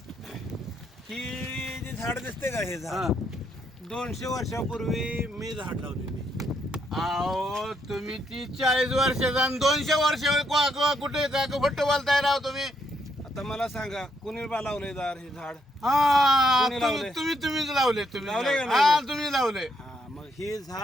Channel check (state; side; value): normal; both; correlation 0.75